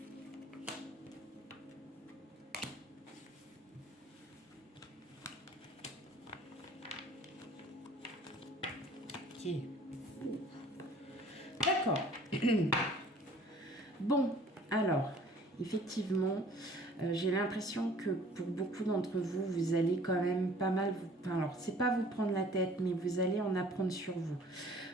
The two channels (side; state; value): both; normal; correlation 0.52